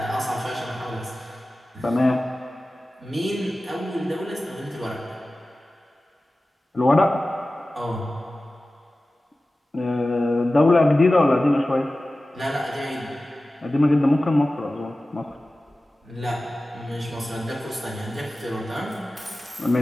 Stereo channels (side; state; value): both; normal; correlation 0.96